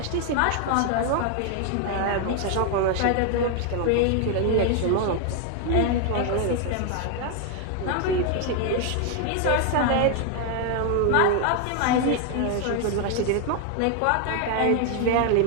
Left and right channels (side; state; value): both; different; correlation 0.00